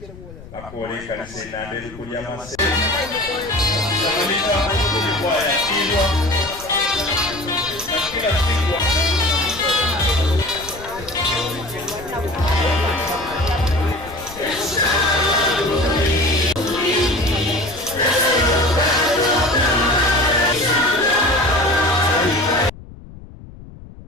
akore kanisa inandeli kulia Masese kila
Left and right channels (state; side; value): noise; left; rumble, 17 dB below the sound